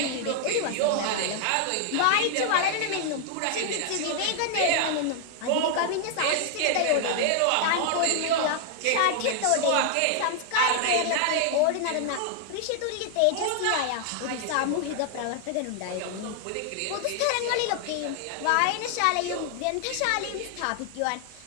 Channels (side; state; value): both; different; correlation 0.00